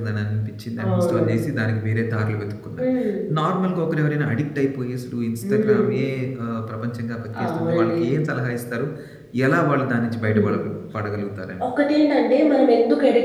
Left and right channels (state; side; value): identical; both; correlation 1.00